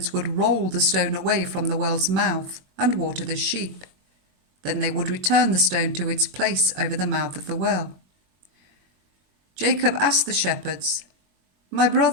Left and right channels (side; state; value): left; late; 21 ms